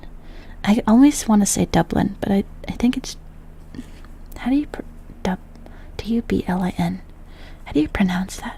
I always want to say Dublin, but I think it's... How do you... D-U-B-L-I-N. How do you pronounce that?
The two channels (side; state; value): both; identical; correlation 1.00